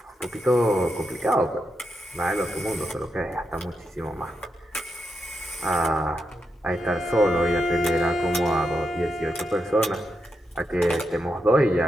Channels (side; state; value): both; normal; correlation 0.85